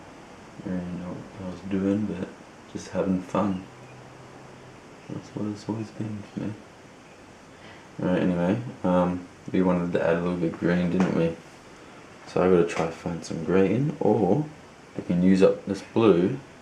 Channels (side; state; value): both; identical; correlation 1.00